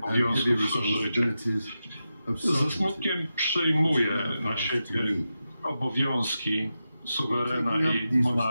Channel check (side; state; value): both; inverted; correlation -0.90